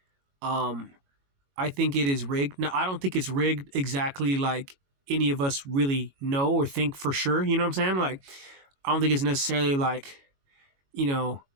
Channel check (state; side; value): late; left; 22 ms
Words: Um, I think it is rigged. Now, I don't think it's rigged exactly like any of us really know or think for sure. You know what I'm saying? Like, I don't think it's necessarily like, you know,